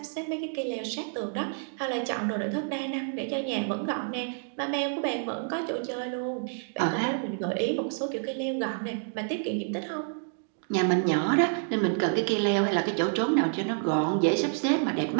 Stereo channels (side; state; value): left; silent; digital silence